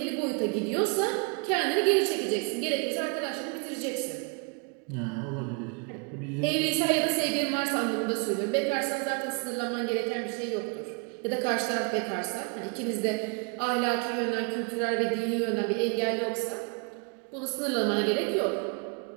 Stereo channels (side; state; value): left; quieter; 33.1 dB